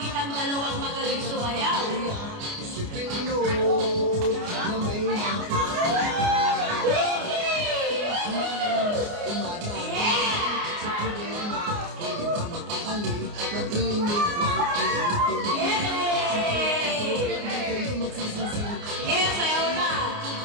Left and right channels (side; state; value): left; late; 29 ms